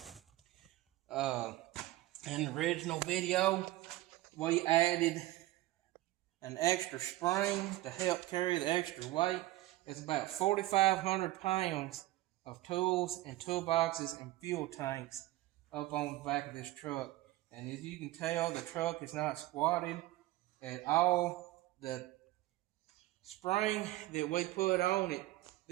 In the original video, we added an extra spring to help carry the extra weight. It's about 4,500 pounds of tools and toolboxes and fuel tanks up on the back of this truck. And as you can tell, the truck is not squatted at all. The spring that we put on it,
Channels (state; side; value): quieter; left; 17.0 dB